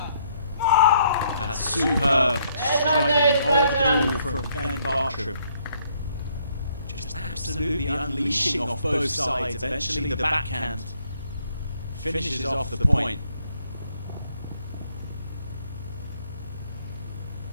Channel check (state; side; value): inverted; both; correlation -0.68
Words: Superb striking of the ball from Ben Bartram. Just absolutely unleashing off both sides. Eventually the backhand finishes off the point.